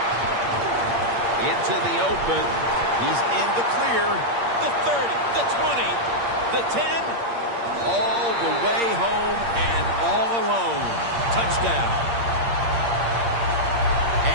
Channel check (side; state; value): left; late; 8.6 ms